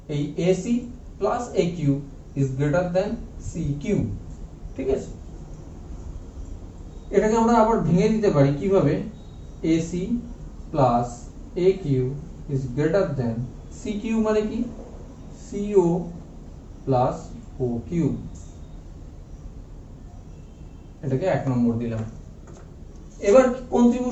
এই AC plus A Q is greater than C Q. ঠিক আছে, এটাকে আমরা আবার ভেঙে দিতে পারি কিভাবে, AC plus A Q is greater than C Q, মানে কি, সিও প্লাস ও কিউ। এটাকে এক নম্বর দিলাম। এবার কোন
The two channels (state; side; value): identical; both; correlation 1.00